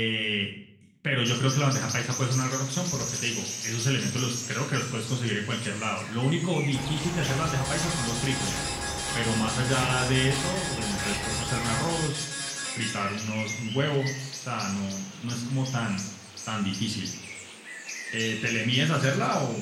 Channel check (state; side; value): identical; both; correlation 1.00